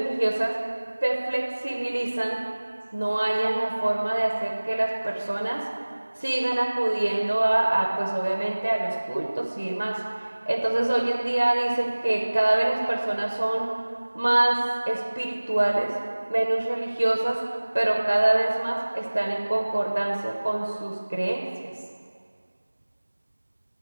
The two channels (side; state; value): both; inverted; correlation -1.00